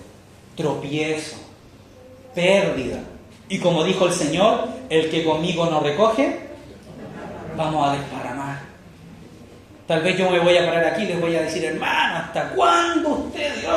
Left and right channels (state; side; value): identical; both; correlation 1.00